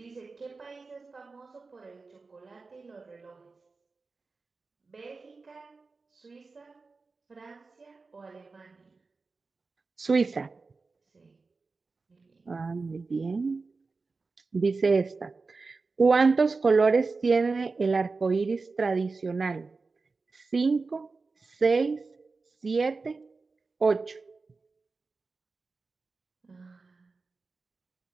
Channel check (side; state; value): left; quieter; 4.1 dB